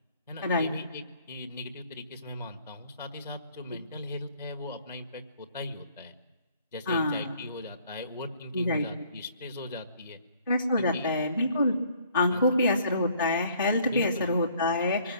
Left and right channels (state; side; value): inverted; both; correlation -0.60